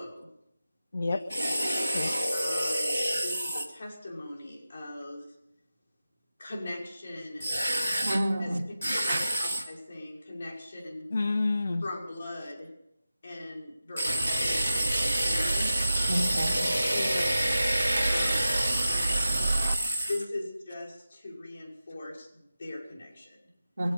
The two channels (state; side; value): inverted; both; correlation -0.90